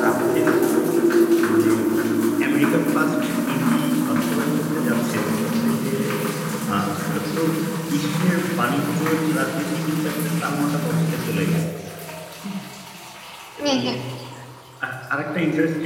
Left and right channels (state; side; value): identical; both; correlation 1.00